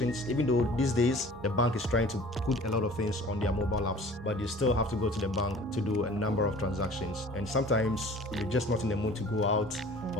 even though these days the bank is trying to put a lot of things on their mobile apps, but you still have to go to the bank to do a number of transactions. And sometimes you're just not in the mood to go out,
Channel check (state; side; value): normal; both; correlation 0.47